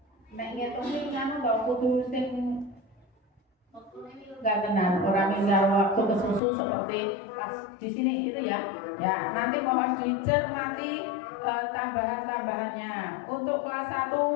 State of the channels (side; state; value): right; drops out; at 6.4 s